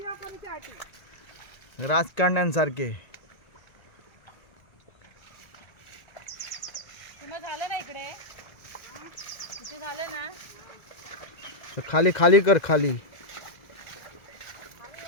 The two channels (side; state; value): right; late; 1.8 ms